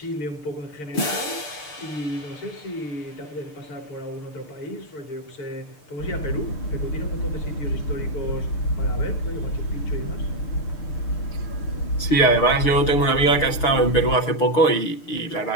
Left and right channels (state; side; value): late; right; 6.7 ms